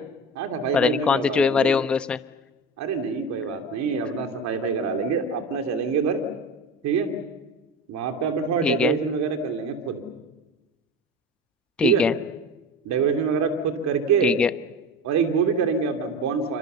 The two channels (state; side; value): normal; both; correlation 0.28